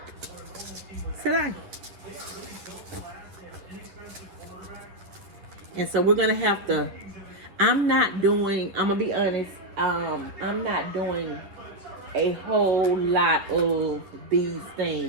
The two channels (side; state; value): left; late; 10 ms